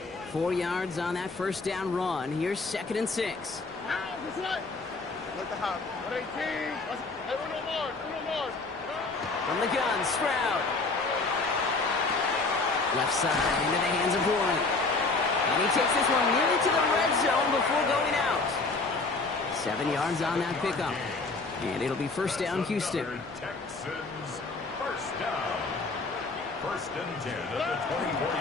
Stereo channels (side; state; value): right; quieter; 3.7 dB